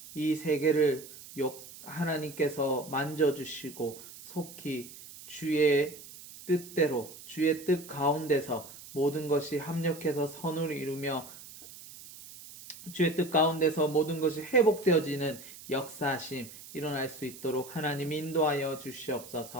이 세계를 하나님께서 만져주시고 속히 주의 뜻대로, 주의 뜻 가운데서 모든 것이 합력해서 선을 이루며 주의 뜻 가운데서 모든 것이 회복되어지는 역사하심 일어날 수 있도록 하나님 인도하여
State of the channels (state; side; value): noise; right; hiss, 16 dB below the sound